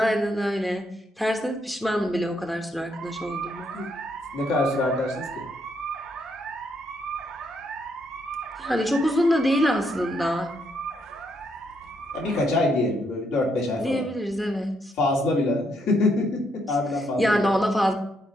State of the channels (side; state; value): both; normal; correlation 0.75